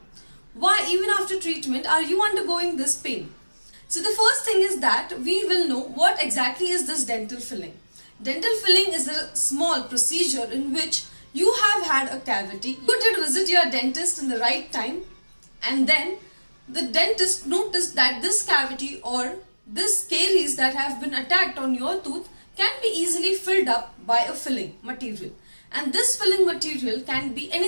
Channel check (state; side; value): inverted; both; correlation -1.00